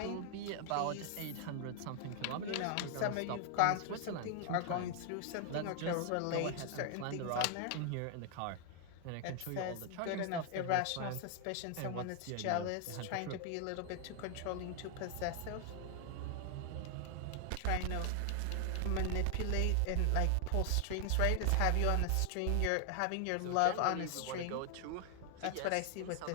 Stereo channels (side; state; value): both; different; correlation 0.00